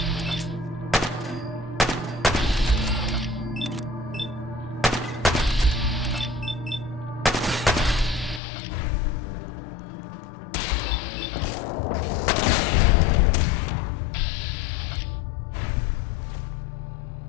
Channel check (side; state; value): right; drops out; at 8.4 s